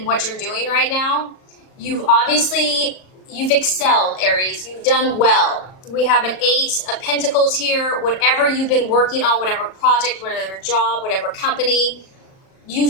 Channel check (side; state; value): right; late; 37 ms